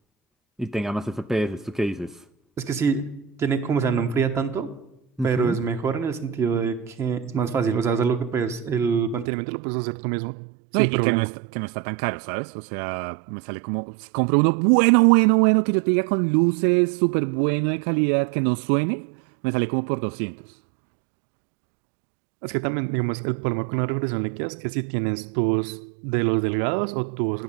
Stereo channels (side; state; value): left; drops out; at 9.2 s